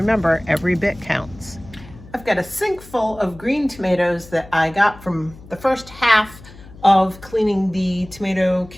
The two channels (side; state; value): left; noise; hum, 20 dB below the sound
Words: every bit counts. I've got a sink full of green tomatoes that I got from the first half of cleaning the tomato